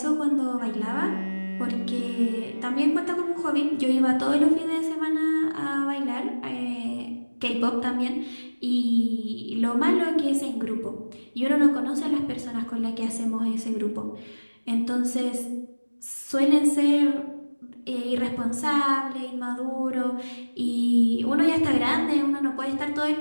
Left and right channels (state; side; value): inverted; both; correlation -1.00